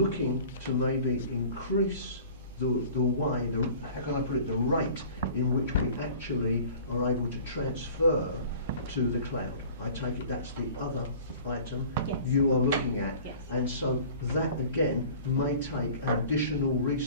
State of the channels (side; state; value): both; inverted; correlation -0.45